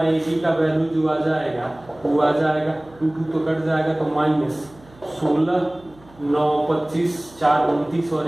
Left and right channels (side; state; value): right; noise; hum, 25 dB below the sound